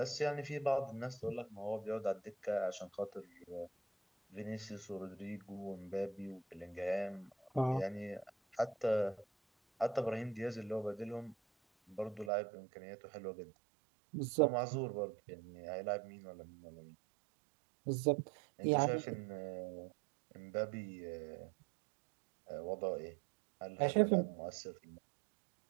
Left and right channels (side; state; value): left; drops out; at 12.3 s